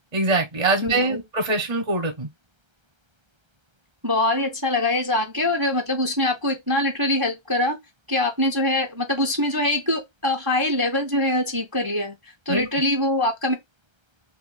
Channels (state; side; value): late; left; 1.3 ms